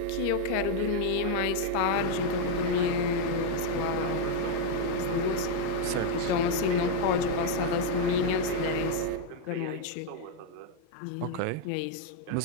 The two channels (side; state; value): both; different; correlation 0.00